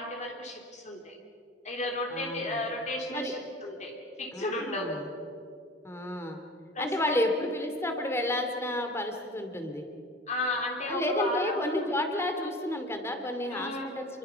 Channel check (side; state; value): both; normal; correlation 0.39